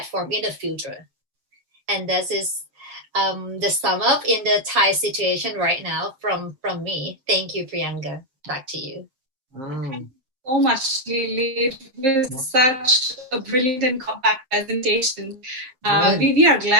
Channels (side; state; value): left; late; 7.5 ms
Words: in the future. And this is the sum up in the Thai situation right now from me. Thank you, Priyanka. Back to you. So much, Lily. It was such a brilliant and compact presentation. We are